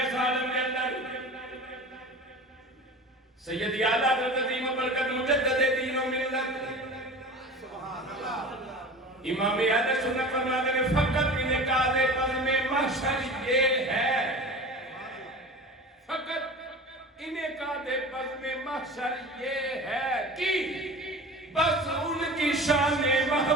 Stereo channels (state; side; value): normal; both; correlation 0.36